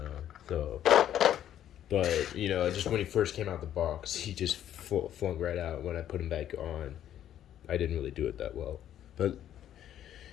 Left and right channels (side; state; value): right; quieter; 11.0 dB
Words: So, but, you know, just when he first came out the box, he just flung right out. When I put him back on, I didn't really do it that well. But